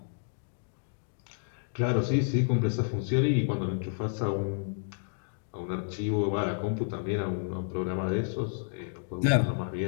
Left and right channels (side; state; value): right; silent; digital silence